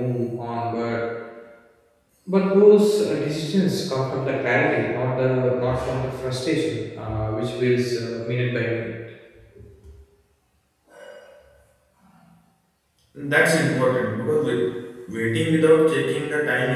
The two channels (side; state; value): both; identical; correlation 1.00